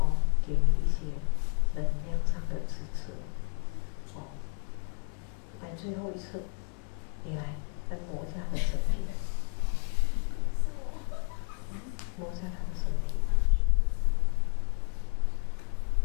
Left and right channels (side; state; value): right; quieter; 38.6 dB